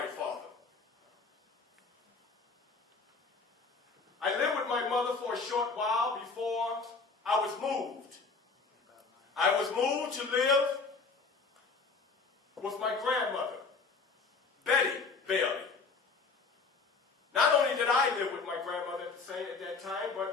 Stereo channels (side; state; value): right; quieter; 4.5 dB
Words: father. I lived with my mother for a short while before I was moved. I was moved to live with my grandmother, Betty Bailey. Not only did I live with my grandmother at that time,